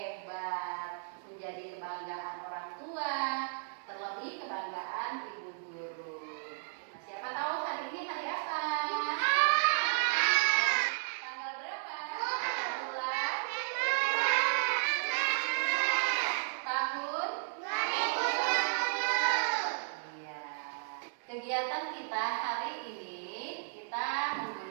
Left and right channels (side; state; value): left; silent; digital silence